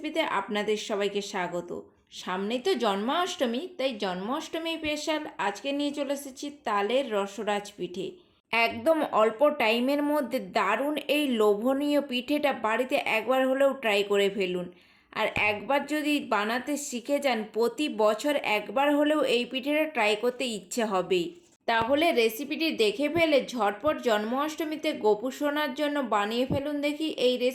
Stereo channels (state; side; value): identical; both; correlation 1.00